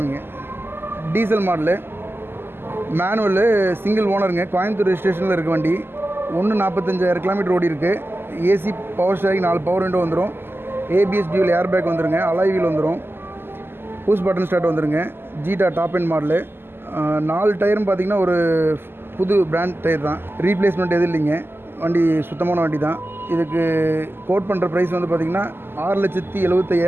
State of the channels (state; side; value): late; left; 0.11 ms